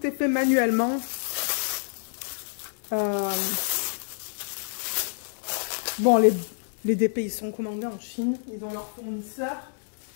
est fait manuellement. Bon, les DP, ils sont commandés en Chine. Ils ont leur fournisseur.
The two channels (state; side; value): silent; right; digital silence